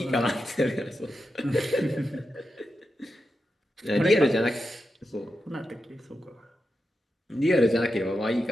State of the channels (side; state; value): both; normal; correlation 0.89